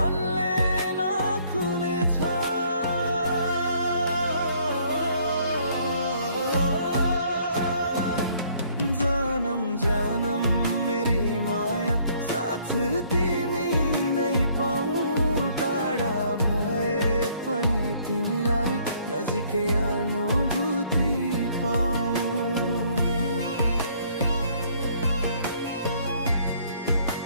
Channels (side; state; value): both; inverted; correlation -0.63